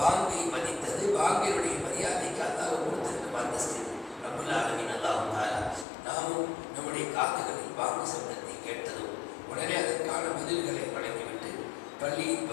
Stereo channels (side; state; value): right; drops out; at 5.9 s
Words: மதித்தது, பாங்கினுடைய மரியாதைக்கு அல்லாஹ் கொடுத்திருக்கும் அந்தஸ்து. ரப்புல் ஆலமீன் அல்லாஹ் தஆலா நாமும் நம்முடைய காதுகளில் பாங்கு சப்தத்தை கேட்டதும் உடனே அதற்கான பதில்களை வழங்கிவிட்டு பள்ளியின்